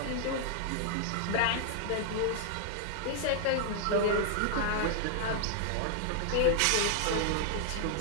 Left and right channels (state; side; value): different; both; correlation 0.00